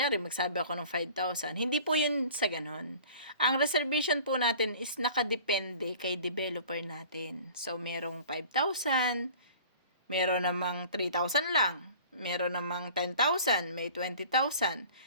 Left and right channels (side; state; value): both; inverted; correlation -0.46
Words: magsabi ako ng 5,000. Hindi po yun sa ganon. Ang reservation po natin is nakadepende kay developer natin. So, merong 5,000, meron namang 3,000 lang, meron namang 10,000, may 20,000.